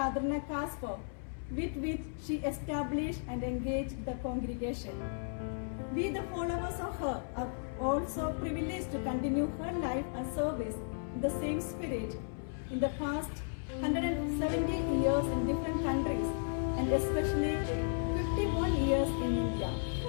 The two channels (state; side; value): silent; right; 55 dB below the other